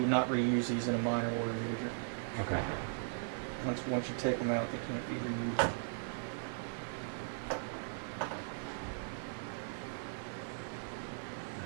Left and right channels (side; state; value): left; silent; digital silence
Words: would not reuse these in a minor water meter. Okay. Once you take them out, they can't be reused.